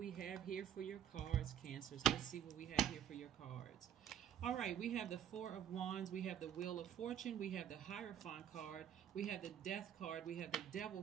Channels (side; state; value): left; quieter; 9.8 dB